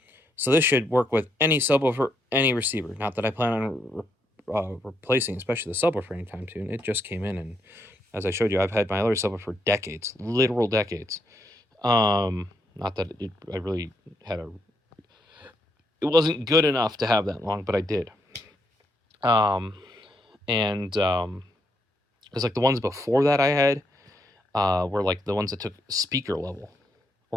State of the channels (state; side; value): normal; both; correlation 0.77